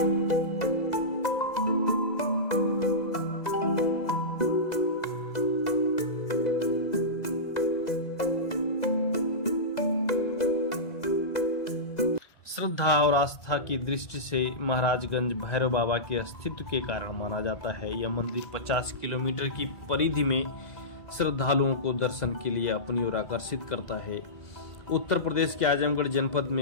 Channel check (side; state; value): right; late; 2.0 ms